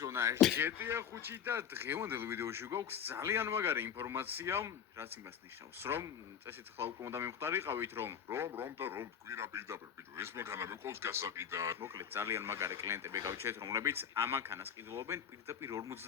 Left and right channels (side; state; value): right; quieter; 8.2 dB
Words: GTA 5 და დღევანდელ ვიდეოში გვაქვს ძალიან მაგარი ინფორმაცია, რაც იმას ნიშნავს, რომ წესით ხლა უკვე უნდა მივხვდარიყავით, რომ თქვირა პირდაპირ ბიჭო, ეს მანქანა მეყავს გასაყიდად. მოკლედ ძალიან მაგარი კლიენტები გავჩერეთ, რომლებიც ამ მანქანას ყიდულობენ პირდაპირ